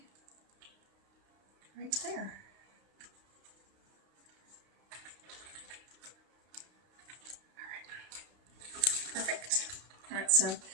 right there. Perfect. All right, so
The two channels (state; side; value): late; left; 32 ms